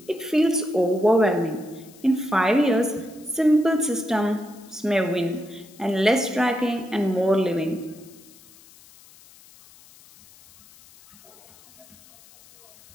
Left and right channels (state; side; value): noise; left; hiss, 24 dB below the sound